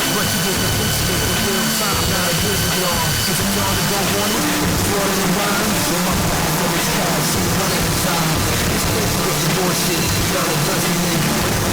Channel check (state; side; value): identical; both; correlation 1.00